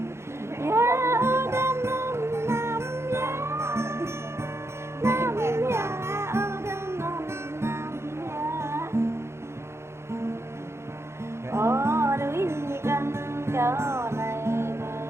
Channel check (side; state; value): left; late; 0.13 ms